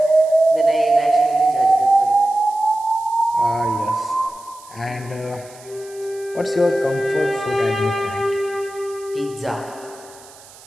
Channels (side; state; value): right; noise; hiss, 22 dB below the sound